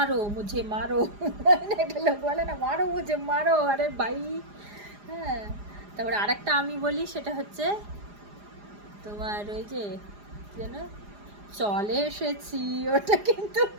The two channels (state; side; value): late; left; 4.9 ms